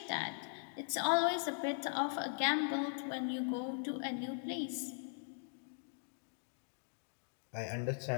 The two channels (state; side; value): silent; right; digital silence